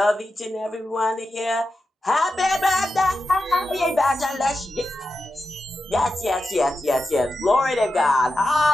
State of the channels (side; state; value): both; normal; correlation 0.90